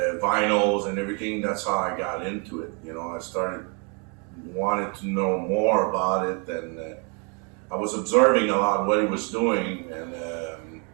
vinyls and everything, that's how I got into it. You know, I started wanting to know more about it, and I was observing a lot what he was doing. And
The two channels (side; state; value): left; quieter; 35.6 dB